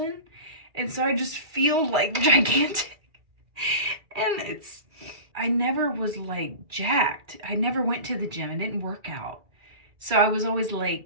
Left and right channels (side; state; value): left; late; 2.3 ms